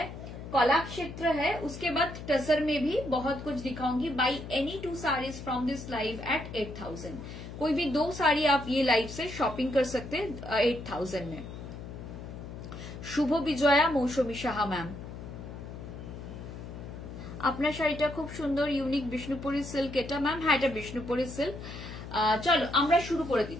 कला क्षेत्र है, उसके बाद टसर में भी बहुत कुछ दिखाऊंगी। By any 2 saris from this live at 8000। कोई भी 2 साड़ी आप ये लाइव से शॉपिंग कर सकते हैं 8000 में। शुभ विजया मौसमी साहा मैम, আপনার শাড়িটা খুব সুন্দর, ইউনিক বিষ্ণুপুরি সিল্ক এটা ম্যাম। হ্যাঁ, এটা বিষ্ণুপুরি সিল্ক। চলো আমরা শুরু করে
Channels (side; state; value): left; noise; hum, 11 dB below the sound